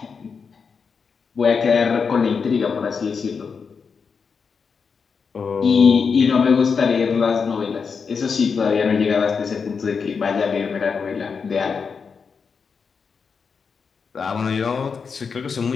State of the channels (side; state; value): right; quieter; 5.6 dB